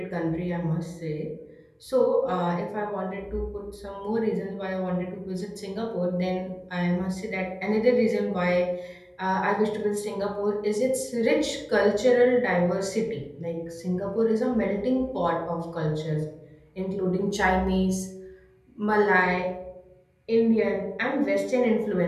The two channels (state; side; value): identical; both; correlation 1.00